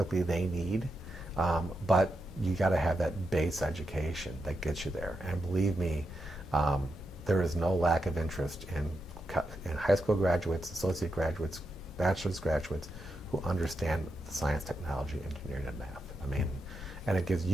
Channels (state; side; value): normal; both; correlation 0.86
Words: they need. But you got to have that base education that gets you there. And believe me, there is no lack of interest in high school graduates, associate graduates bachelor's graduates who understand science, technology, engineering, and math. I mean, and it gives